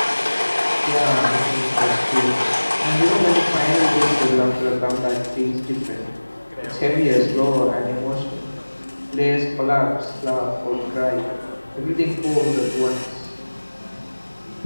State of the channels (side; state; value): both; inverted; correlation -1.00